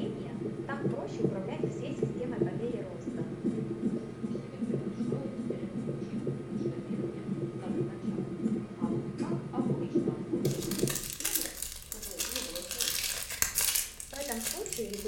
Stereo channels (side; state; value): both; identical; correlation 1.00